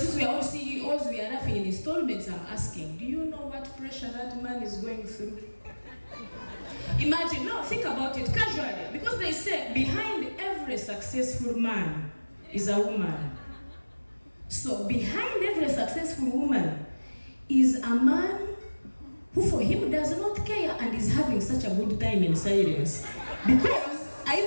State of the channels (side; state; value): both; inverted; correlation -1.00